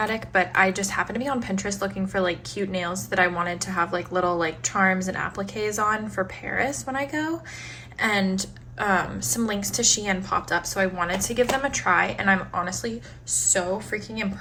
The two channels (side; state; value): both; identical; correlation 1.00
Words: but I just happened to be on Pinterest looking for like cute nails that I wanted to have like little like charms and appliques on for Paris when I go, and some links to Shein popped up, so I wanted to give them a try, and I'm honestly so freaking